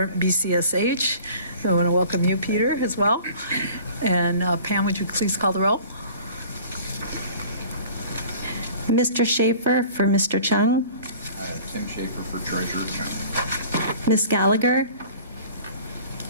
BCSH, so I want to welcome you, Peter, as well. And Pam, would you please call the roll? Mr. Schaefer for Mr. Chung. Tim Schaefer for Treasurer Chung. Ms. Gallagher.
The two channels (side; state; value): both; inverted; correlation -0.46